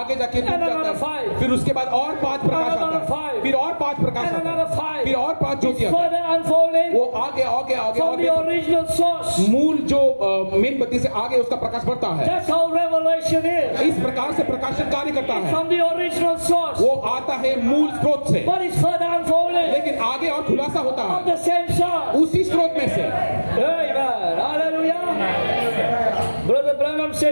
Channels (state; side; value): inverted; both; correlation -1.00